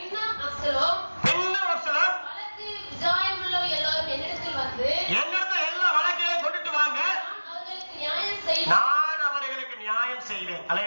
அப்சலோம் வழக்கு விஜாயமுள்ளவை எல்லாரும் என்னிடத்தில் வந்து, என்னிடத்தில் எல்லா வழக்கையும் கொண்டுட்டு வாங்க, நான் அவர்களுக்கு நியாயம் செய்வேன்.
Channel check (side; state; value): both; inverted; correlation -1.00